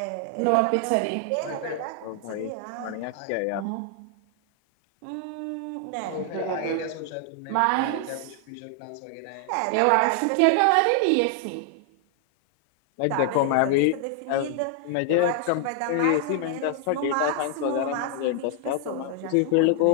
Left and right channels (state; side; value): different; both; correlation 0.00